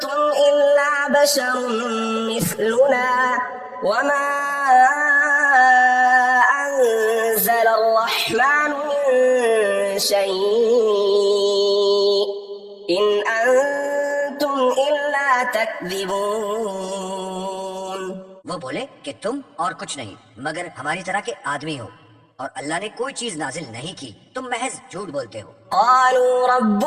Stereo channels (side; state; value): both; identical; correlation 1.00